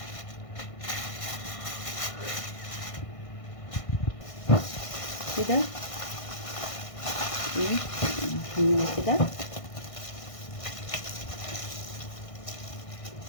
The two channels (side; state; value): right; late; 1.5 ms